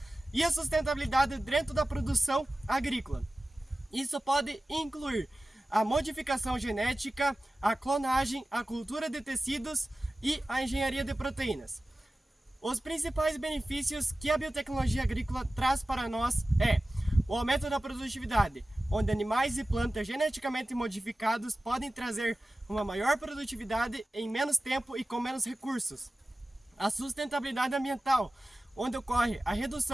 e a sustentabilidade dentro da produção agrícola. Isso pode incluir a modificação genética, a clonagem, a cultura de tecidos e a engenharia de proteínas. Os principais benefícios que a biotecnologia agrícola traz para nós é o aumento da produtividade, onde animais e plantas geneticamente modificados podem trazer uma maior produtividade em menos tempo e com menos recursos. A sustentabilidade ambiental, onde ocorre a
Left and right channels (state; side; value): normal; both; correlation 0.96